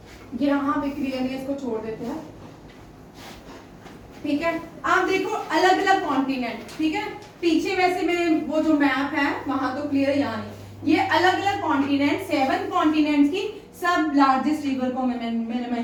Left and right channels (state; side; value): identical; both; correlation 1.00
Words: यहाँ पे क्लियरली इसको छोड़ देते हैं, ठीक है। आप देखो अलग अलग कॉन्टिनेंट, ठीक है। पीछे वैसे में वो जो मैप है वहां तो क्लियर, यहाँ नहीं। ये अलग अलग कॉन्टिनेंट, 7 कॉन्टिनेंट्स की सब लार्जेस्ट रिवर को मैंने